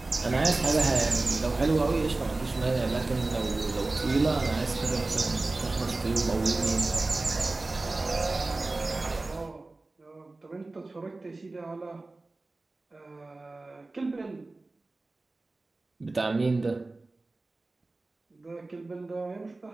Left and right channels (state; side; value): quieter; left; 3.2 dB